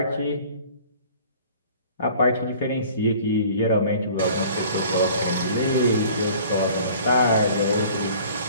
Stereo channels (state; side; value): inverted; both; correlation -0.49